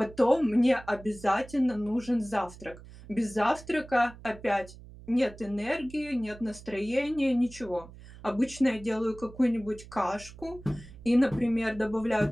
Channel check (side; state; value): right; noise; hum, 18 dB below the sound